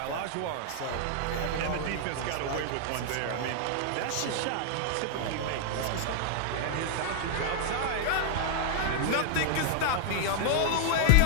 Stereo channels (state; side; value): different; both; correlation -0.01